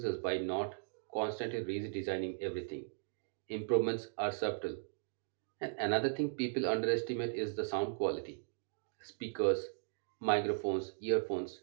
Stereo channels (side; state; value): left; silent; digital silence